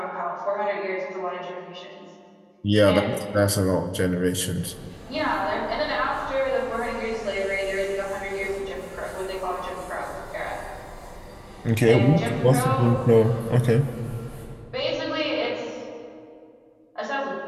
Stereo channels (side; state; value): both; identical; correlation 1.00